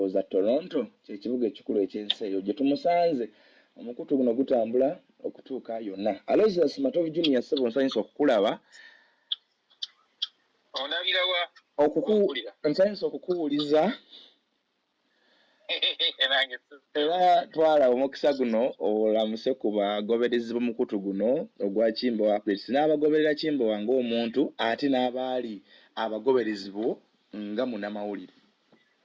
Toronto, kye kibuga ekikulu eky'ensi eyo gye tumusanze. Omukutu guno gutambula okutuuka yonna. ALOYSIUS MATOVU Junior ssebo nsanyusa okukulaba. Nsanyusa okukuwuliza era twala omukisa guno olamuse ku bagoberezi b'omukutu guno ogwa Kimbowa updates n'abagoberera Kimbowa ng'omuntu ate n'abaali abagoberezi bo nga munnamawulire.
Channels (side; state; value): both; identical; correlation 1.00